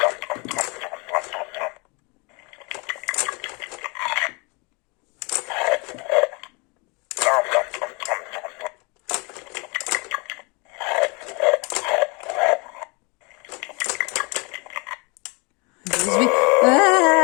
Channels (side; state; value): right; quieter; 29.7 dB